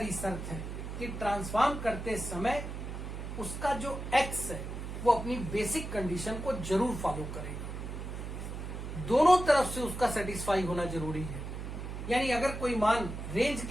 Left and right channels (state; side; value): noise; right; hum, 7 dB below the sound